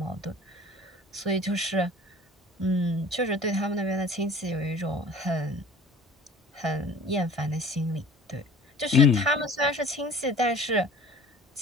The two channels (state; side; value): normal; both; correlation 0.46